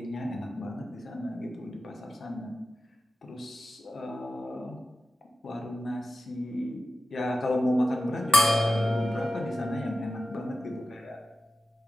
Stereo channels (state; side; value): normal; both; correlation 0.93